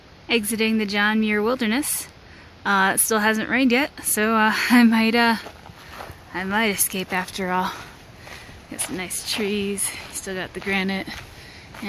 Exiting the John Muir Wilderness. It still hasn't rained yet, so I might escape after all. Got some nice trees, still got the granite,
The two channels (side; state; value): both; identical; correlation 1.00